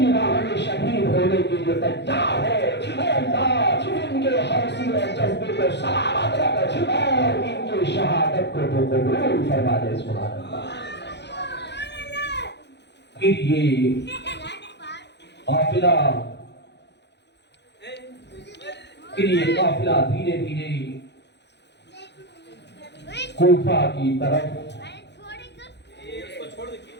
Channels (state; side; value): late; right; 0.50 ms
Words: راہ میں شہید ہونے کے لیے تیار ہے۔ اے اللہ ان کے حوصلے اور جذبے کو سلامت رکھ اور ان کی شہادت کو تو قبول فرما دے۔ سبحان اللہ۔ پھر یہ قافلہ دھیرے دھیرے کوفہ کی طرف